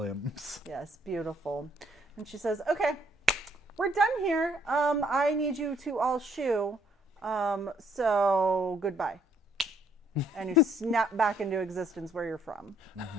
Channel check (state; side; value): normal; both; correlation 0.67